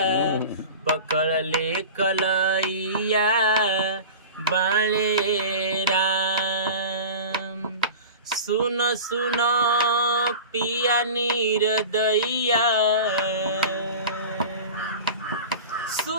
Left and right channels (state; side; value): inverted; both; correlation -0.35